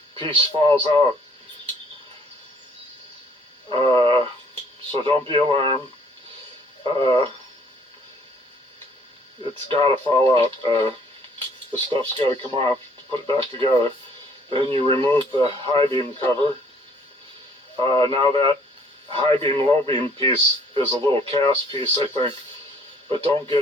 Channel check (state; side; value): normal; both; correlation 0.60